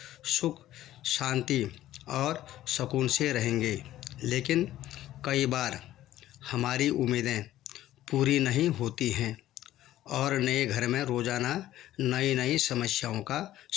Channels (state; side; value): quieter; right; 13.8 dB